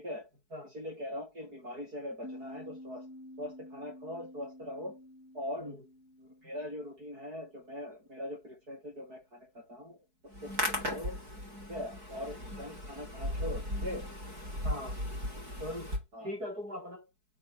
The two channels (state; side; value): late; left; 4.7 ms